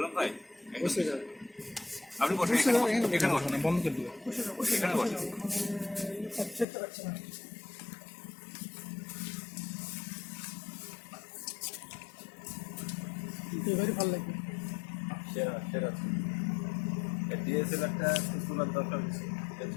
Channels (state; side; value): drops out; right; at 6.7 s